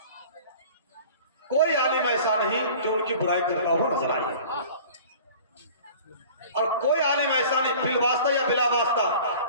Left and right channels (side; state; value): both; inverted; correlation -0.44